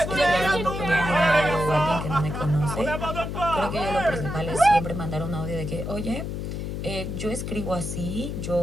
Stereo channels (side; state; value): left; noise; hum, 5 dB below the sound